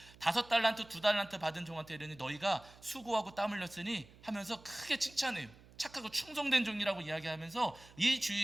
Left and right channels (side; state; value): right; noise; hum, 23 dB below the sound